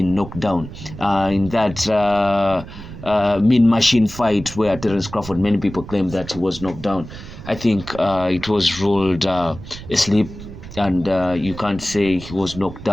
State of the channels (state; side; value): noise; right; rumble, 14 dB below the sound